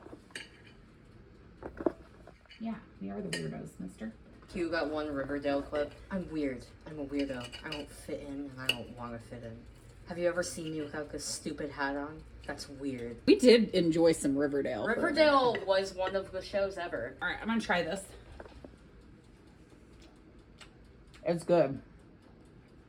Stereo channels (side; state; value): both; identical; correlation 1.00